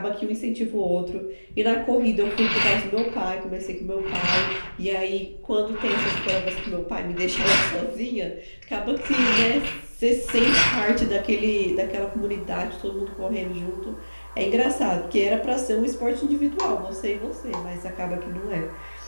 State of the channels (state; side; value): inverted; both; correlation -1.00